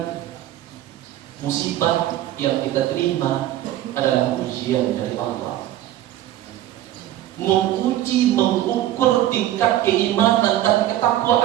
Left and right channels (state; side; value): quieter; left; 13.3 dB